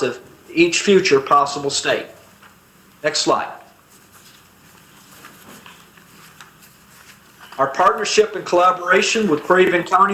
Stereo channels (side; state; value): both; identical; correlation 1.00